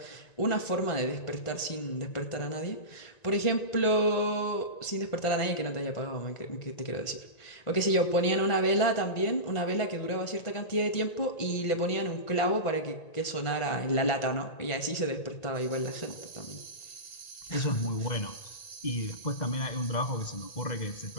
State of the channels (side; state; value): right; late; 1.9 ms